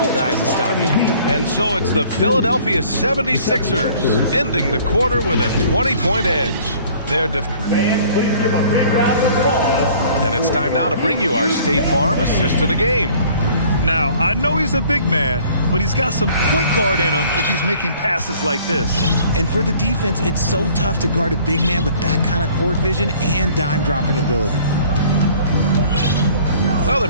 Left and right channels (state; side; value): inverted; both; correlation -0.53